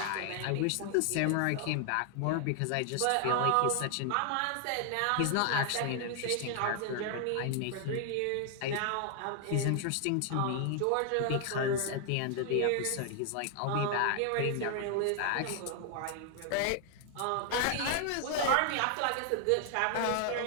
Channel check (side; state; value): both; different; correlation 0.00